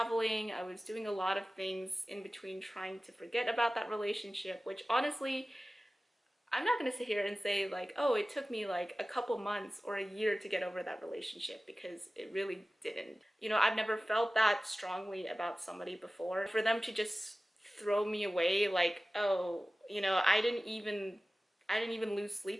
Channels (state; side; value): normal; both; correlation 0.96